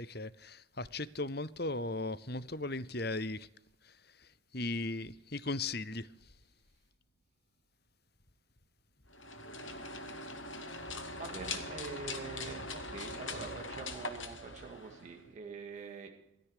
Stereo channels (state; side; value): normal; both; correlation 0.19